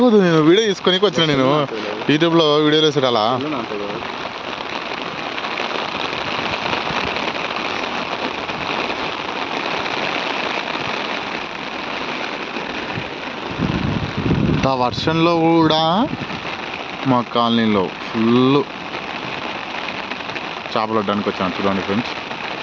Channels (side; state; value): both; identical; correlation 1.00